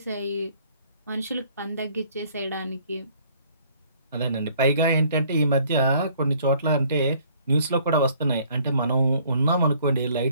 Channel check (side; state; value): both; inverted; correlation -0.60